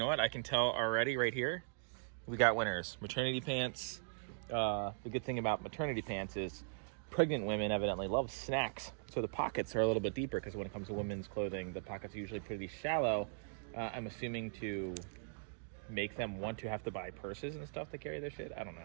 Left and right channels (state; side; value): silent; left; digital silence